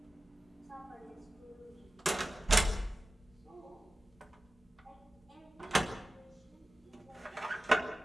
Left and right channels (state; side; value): normal; both; correlation 0.95